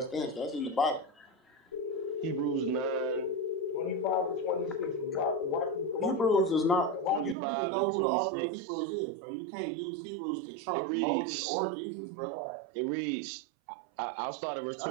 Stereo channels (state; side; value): drops out; left; at 7.4 s